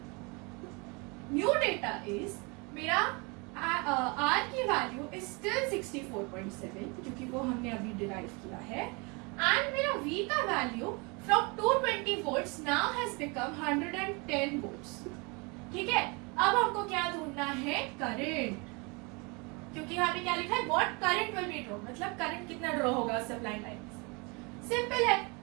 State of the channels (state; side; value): quieter; left; 29.7 dB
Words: new data is मेरा R की वैल्यू इज स्टिल 64.7 क्योंकि वो हमने अभी डिराइव किया है, एंड मेरा V का value from 220 volts now has become 110 volts. ठीक है, अब हमको क्या ढूंढना है? करंट, क्योंकि यहाँ पे क्या लिखा है? What current will be draw, मतलब करंट कितना ड्रॉ होगा सप्लाई लाइन से। सिंपल है,